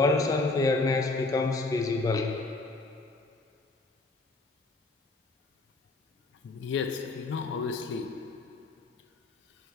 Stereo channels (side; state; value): right; quieter; 3.2 dB